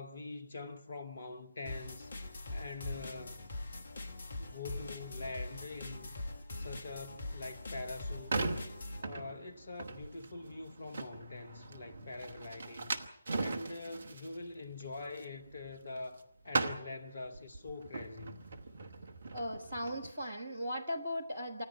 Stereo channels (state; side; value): inverted; both; correlation -0.83